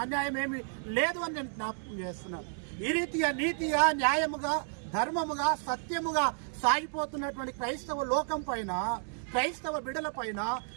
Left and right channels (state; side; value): silent; left; 57 dB below the other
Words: అన్యాయం ఏమీ లేదు అని నేను జ్ఞాపకం చేస్తున్నాను. ఈ రీతిగా నీతిగా, న్యాయముగా, ధర్మముగా, సత్యముగా సాగిపోతున్నటువంటి క్రైస్తవ లోకం పైన, క్రైస్తవ బిడ్డల పైన,